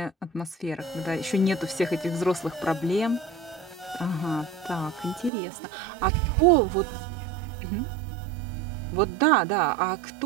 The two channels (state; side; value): drops out; left; at 5.3 s